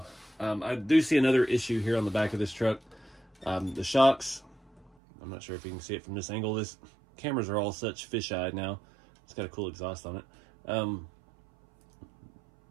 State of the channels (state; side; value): drops out; left; at 4.9 s